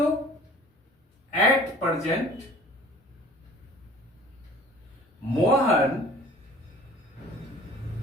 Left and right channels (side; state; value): both; normal; correlation 0.47